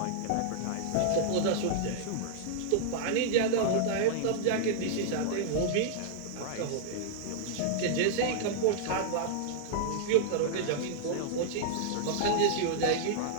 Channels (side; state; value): both; different; correlation -0.01